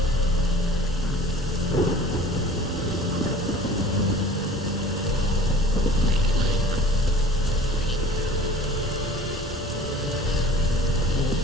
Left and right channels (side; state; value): both; normal; correlation 0.46